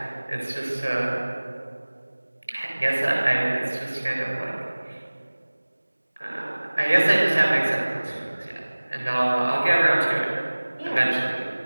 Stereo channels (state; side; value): inverted; both; correlation -1.00